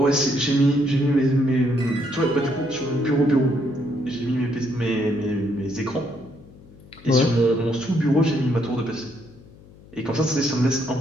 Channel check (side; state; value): left; noise; hum, 23 dB below the sound